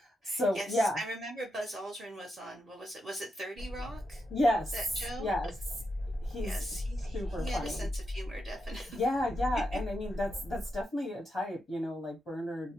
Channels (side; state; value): both; normal; correlation 0.85